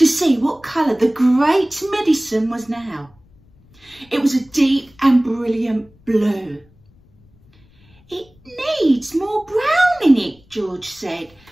see what colour the great medicine was now. It was a deep and brilliant blue. "It needs more brown in it," George said.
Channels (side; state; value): left; noise; rumble, 30 dB below the sound